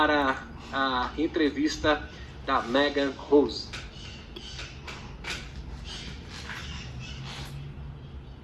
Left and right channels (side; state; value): both; identical; correlation 1.00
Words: a entrevista da Megan Rose.